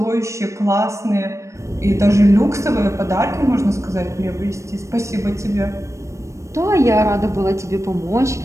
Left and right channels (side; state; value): left; late; 0.15 ms